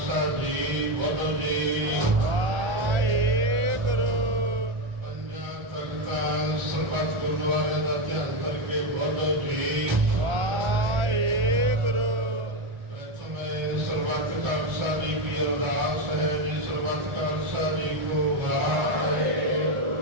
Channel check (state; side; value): late; left; 1.4 ms